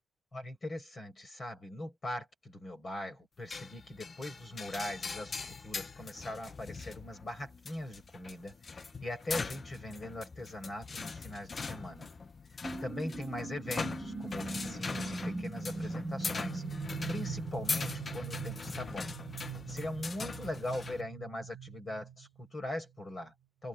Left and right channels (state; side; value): normal; both; correlation 0.87